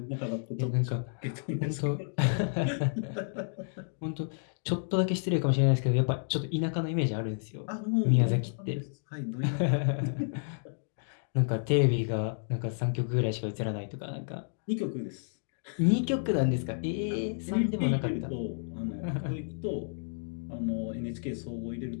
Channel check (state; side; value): silent; right; digital silence